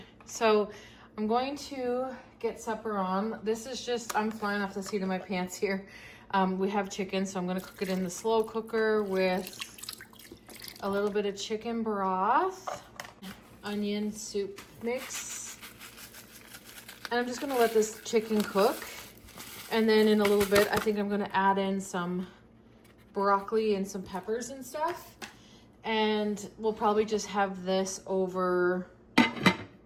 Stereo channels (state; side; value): identical; both; correlation 1.00